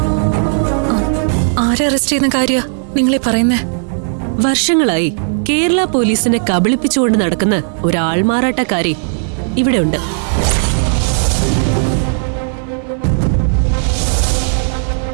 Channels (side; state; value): left; silent; 70 dB below the other